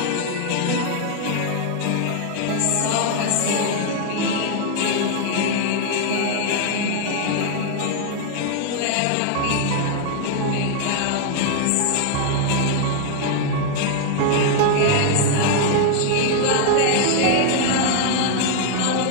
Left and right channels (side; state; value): both; different; correlation 0.00